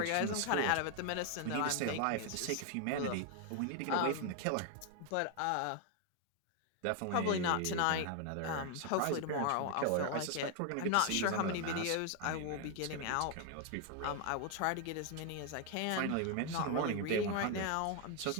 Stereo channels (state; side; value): different; both; correlation 0.01